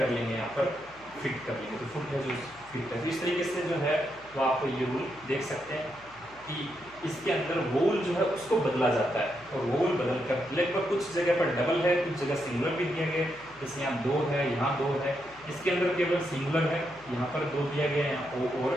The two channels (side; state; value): left; noise; hum, 25 dB below the sound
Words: लेंगे, यहाँ पर फिट कर लेंगे, तो फुट है जो फिट है। तो इस तरीके से जो है वो आप ये रूल देख सकते हैं कि इसके अंदर वोवल जो है उसको बदला जाता है, और वोवल बदल कर लगभग कुछ जगह पर डबल है, कुछ जगह सिंगुलर भी दिया गया है। जैसे यहाँ दो है, यहाँ दो है, इसके अंदर केवल सिंगुलर है, यहाँ पर दो दिया गया है, यहाँ ओ और